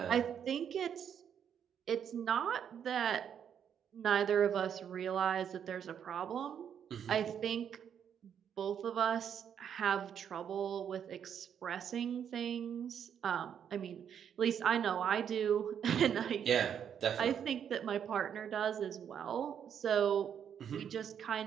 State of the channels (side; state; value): left; quieter; 8.4 dB